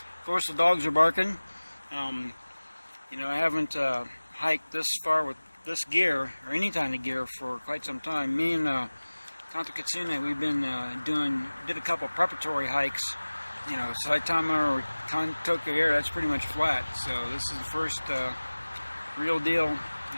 course, the dogs are barking. You know, I haven't hiked this far with this gear or any kind of gear for quite some time. Me and Kanto Kitsune, we've been did a couple preparatory hikes. You know, Saitama or Kanto Air, that's pretty much flat. So this is the first real deal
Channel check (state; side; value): inverted; both; correlation -1.00